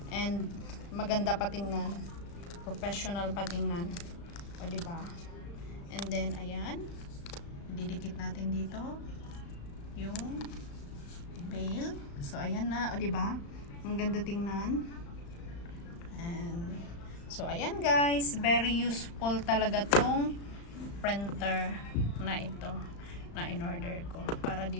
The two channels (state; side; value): late; right; 35 ms